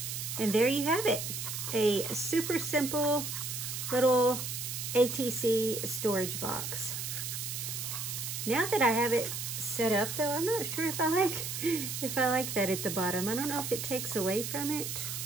And there you have it. A super simple little ATC storage box. Now that I have it set up though, I'm not sure if I like that at the bottom. I don't know if it takes away from it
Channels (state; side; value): noise; right; hiss, 4 dB below the sound